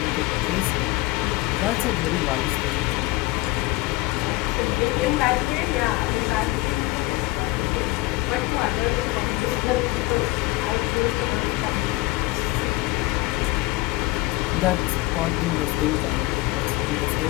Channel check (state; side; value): quieter; right; 21.1 dB